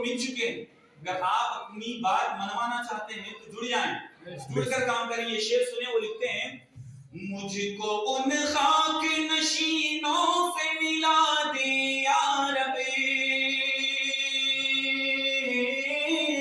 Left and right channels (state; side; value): identical; both; correlation 1.00